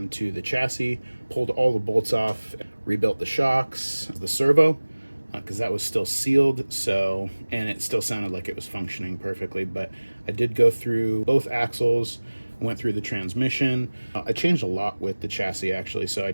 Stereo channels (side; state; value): both; inverted; correlation -1.00